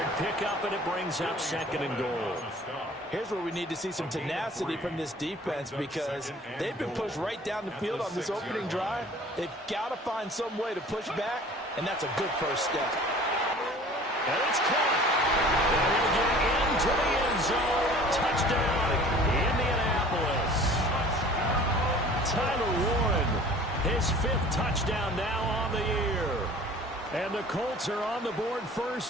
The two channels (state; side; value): normal; both; correlation 0.47